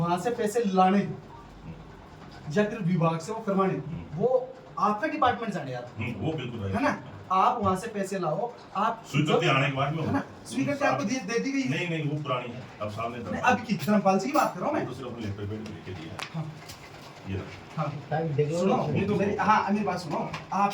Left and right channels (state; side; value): identical; both; correlation 1.00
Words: से पैसे लाने या फिर विभाग से वो करवाने वो आपका डिपार्टमेंट जाने यार वो बिल्कुल है ना आप वहां से पैसे लाओ आप स्वीकृति आने के बाद में है ना स्वीकृति आपको दे दी गई है नहीं नहीं वो पुरानी है अब सामने नहीं, अब की धर्मपाल जी की बात कर रहा हूँ मैं दूसरे अपने लेटर पेड लिख के दिया है हाँ। ये हाँ ताकि देख लो सुनो ना। हाँ मेरी बात सुनो